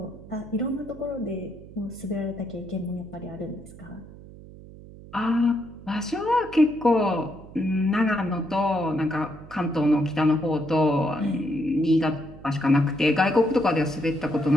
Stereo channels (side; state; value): right; noise; hum, 18 dB below the sound